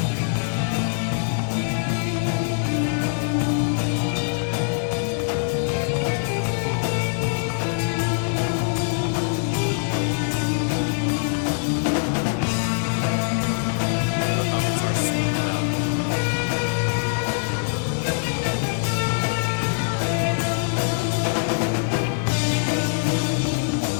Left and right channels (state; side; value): silent; right; 63 dB below the other